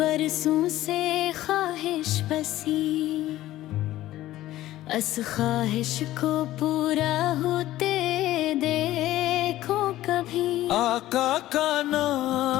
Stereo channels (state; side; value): quieter; right; 15.0 dB